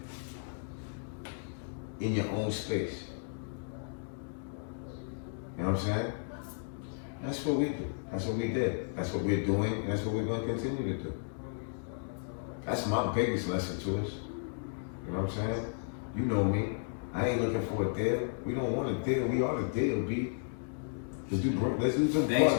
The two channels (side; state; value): right; silent; digital silence